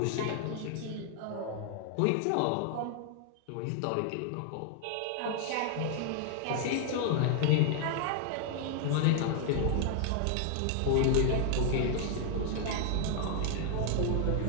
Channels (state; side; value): different; both; correlation 0.00